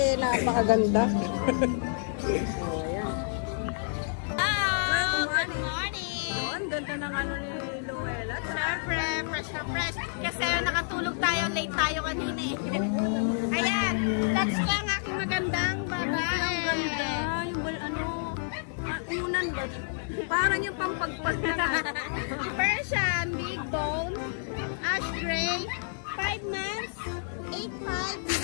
napakaganda. Oh, ayan. Good morning! Oh, ang ganda ng ano ni Luella. Siyempre, fresh na fresh. Kasi nakatulog tayo, late tayo kanina eh. Ayan, that's ko ang aking magandang babae. Ang ganda. Yung ano, unan ba? Parang yung pampagpag na. Persian, big bone, ash gray, 5 months, 8.5,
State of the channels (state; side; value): silent; right; 58 dB below the other